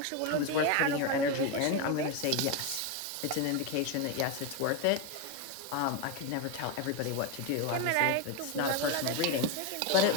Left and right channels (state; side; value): different; both; correlation 0.03